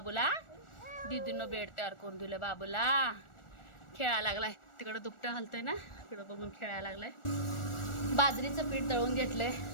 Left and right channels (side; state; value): right; late; 1.4 ms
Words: दीदीनं बेड तयार करून दिलं बाबूला. खेळायला लागलाय तिकडं, दुपटं हलतंय ना, तिकडं बघून खेळायला लागलाय. बाजरीचं पीठ दळून घेतलंय,